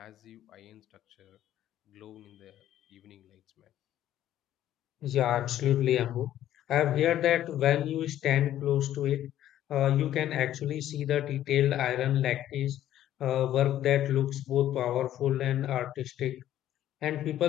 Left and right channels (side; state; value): right; quieter; 12.2 dB